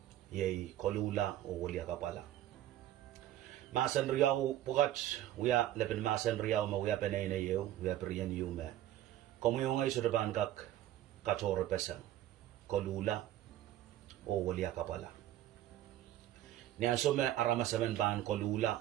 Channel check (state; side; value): quieter; left; 13.1 dB